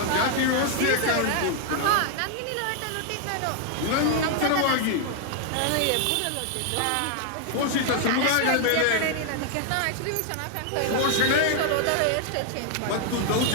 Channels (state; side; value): different; both; correlation 0.00